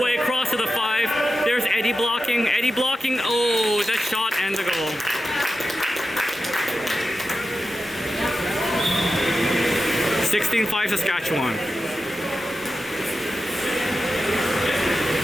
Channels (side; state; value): both; normal; correlation 0.91